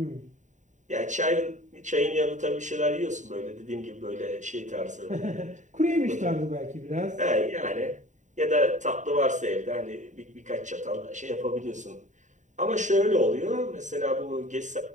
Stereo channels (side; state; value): left; late; 0.36 ms